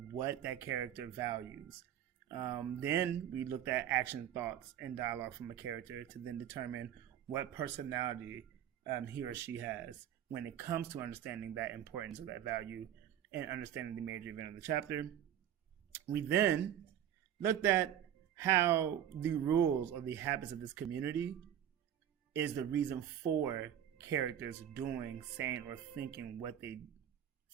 that character values. Then we looked at action, thoughts, and dialogue from a character to then determine what personality he or she has when it comes to understanding that importance of that value and understanding the major event of the chapter. We then looked at how the rules or the habits of this community is the reason for characters doing, saying, or thinking what they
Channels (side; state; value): left; quieter; 10.3 dB